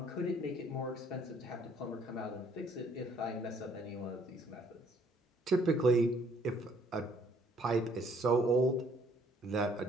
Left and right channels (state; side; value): normal; both; correlation 0.63